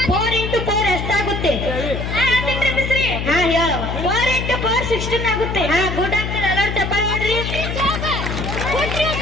4 into 4 ಎಷ್ಟಾಗುತ್ತೆ? ಹಾ ಹೇಳವ. 4 into 4 16 ಆಗುತ್ತೆ. ಹಾ ಗುಡ್ ಆಗ್ತದೆ. ಎಲ್ಲರೂ ಚಪ್ಪಾಳೆ ಮಾಡ್ರಿ.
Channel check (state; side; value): noise; left; hum, 4 dB below the sound